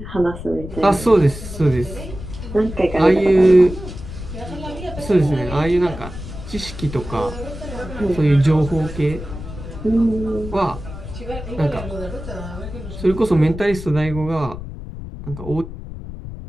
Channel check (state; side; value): noise; left; rumble, 11 dB below the sound